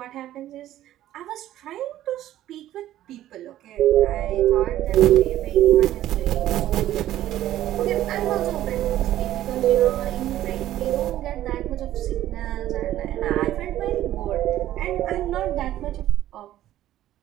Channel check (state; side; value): quieter; left; 13.4 dB